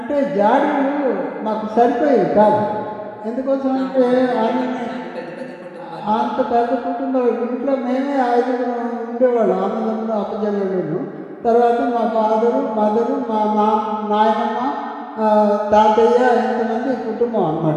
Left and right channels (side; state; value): both; identical; correlation 1.00